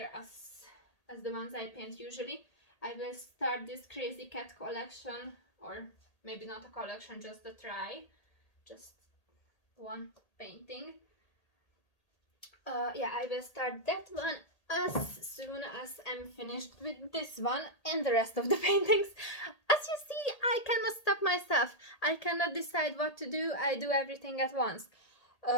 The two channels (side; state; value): right; late; 1.8 ms